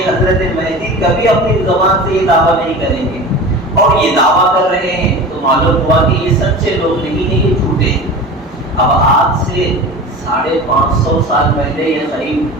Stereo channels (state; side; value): normal; both; correlation 0.34